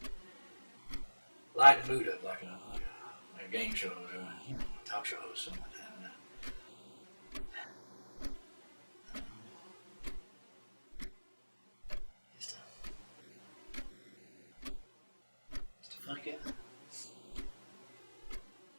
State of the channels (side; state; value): both; inverted; correlation -1.00